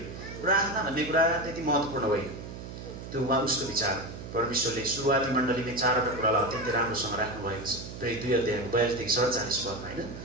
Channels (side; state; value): right; noise; hum, 11 dB below the sound